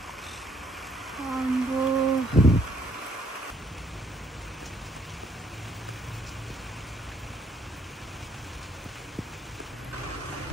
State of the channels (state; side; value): normal; both; correlation 0.67